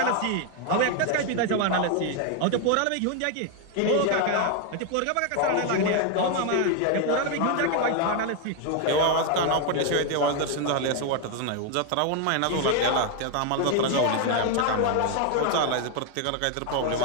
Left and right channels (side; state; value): both; different; correlation 0.01